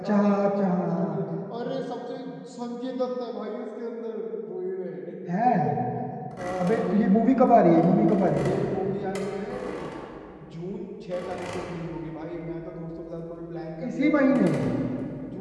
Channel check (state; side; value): identical; both; correlation 1.00